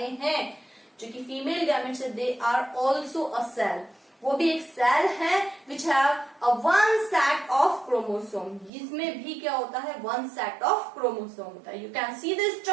हैं जो कि फीमेल गैमेट्स है, they are also a cell. वो भी एक सेल है which have a one set of chromosome. इसमें भी क्या होता है, वन सेट ऑफ क्रोमोसोम होता है. You can see the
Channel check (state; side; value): drops out; left; at 8.7 s